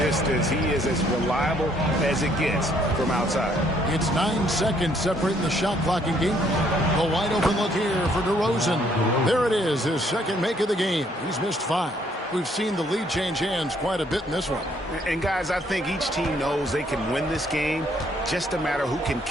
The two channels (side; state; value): both; normal; correlation 0.67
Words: He is as reliable as it gets from outside. It's 9 seconds separating the shot clock and game. A wide open look here for DeRozan. There it is, his second make of the game. He's missed 5. We've seen the lead change hands quite a bit in this one. And guys, I think each team knows they can win this game. Just a matter who can